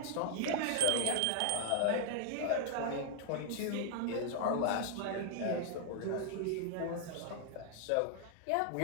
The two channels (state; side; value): different; both; correlation -0.01